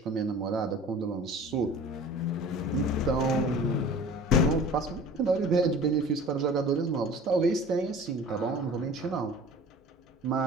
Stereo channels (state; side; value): normal; both; correlation 0.42